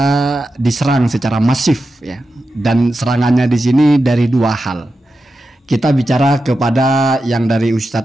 diserang secara masif ya. Dan serangannya di sini dari dua hal. Kita bicara kepada yang dari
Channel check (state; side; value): normal; both; correlation 0.91